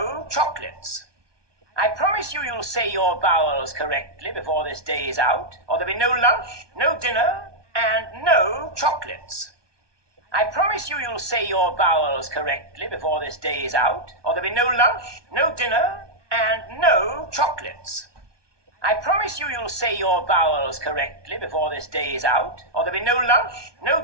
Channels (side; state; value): left; late; 1.2 ms